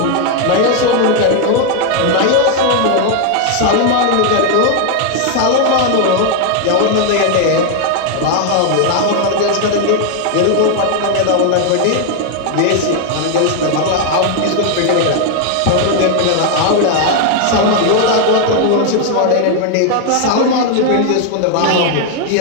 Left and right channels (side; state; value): both; different; correlation 0.00